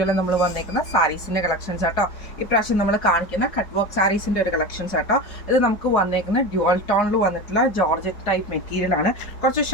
നമ്മൾ വന്നേക്കുന്ന സാരീസിൻ്റെ കളക്ഷൻസ് ആട്ടോ. ഇപ്രാവശ്യം നമ്മൾ കാണിക്കുന്ന കട്ട് വർക്ക് സാരീസിൻ്റെ ഒരു കളക്ഷൻസ് ആട്ടോ. ഇത് നമുക്ക് വന്നേക്കുന്ന ഡ്യുവൽ ടോണിൽ വന്നിട്ടുള്ള ജോർജറ്റ് ടൈപ്പ് മെറ്റീരിയൽ ആണ്. കുറച്ച്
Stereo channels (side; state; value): right; late; 4.8 ms